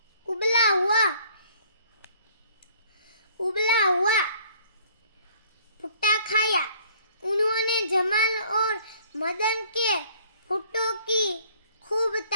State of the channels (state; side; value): inverted; both; correlation -0.58